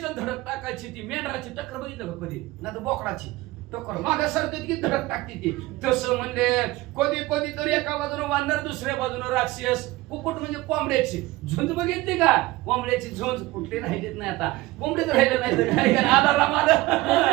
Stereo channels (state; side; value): quieter; left; 19.3 dB